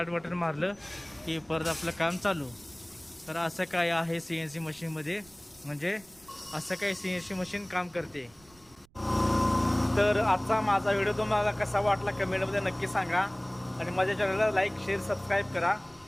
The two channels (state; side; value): noise; right; rumble, 28 dB below the sound